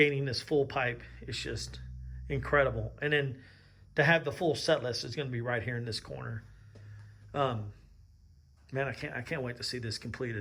this full pipe is just incredible. And then to have the full set list is going to be right here in this corner. Man, I can't wait to see this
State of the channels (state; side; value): identical; both; correlation 1.00